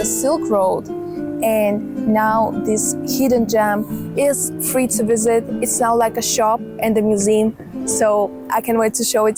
Silk Road. And now this hidden gem is free to visit. It's now like a shop and a museum. So I can't wait to show it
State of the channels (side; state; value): both; identical; correlation 1.00